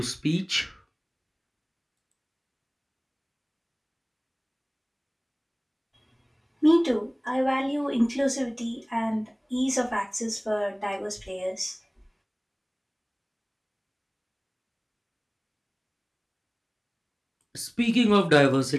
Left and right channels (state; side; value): identical; both; correlation 1.00